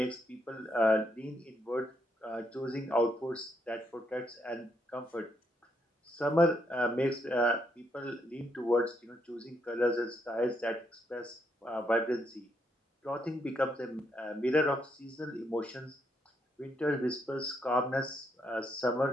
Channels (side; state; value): both; normal; correlation 0.76